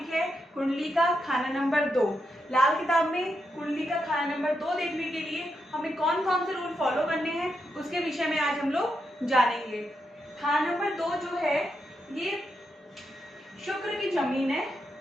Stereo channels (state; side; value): normal; both; correlation 0.83